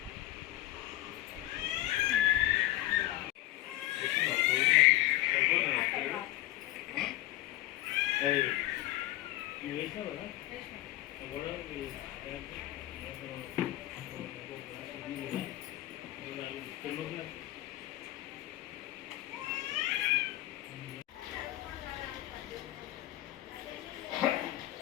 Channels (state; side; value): quieter; right; 16.4 dB